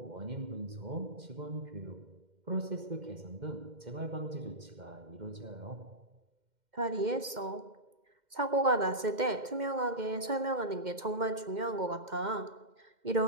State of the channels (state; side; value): late; left; 2.1 ms